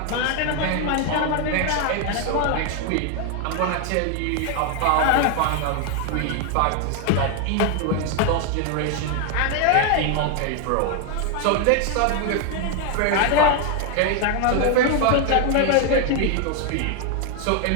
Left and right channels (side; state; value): both; different; correlation 0.00